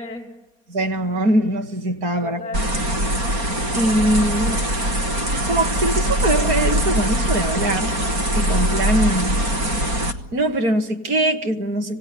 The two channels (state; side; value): late; left; 4.2 ms